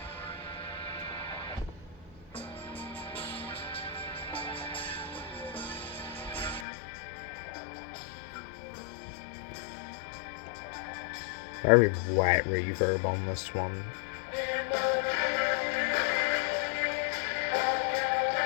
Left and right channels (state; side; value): drops out; right; at 6.7 s